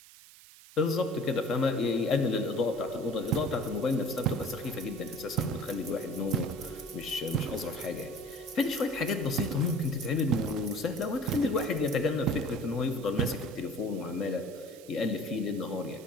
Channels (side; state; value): right; noise; hiss, 20 dB below the sound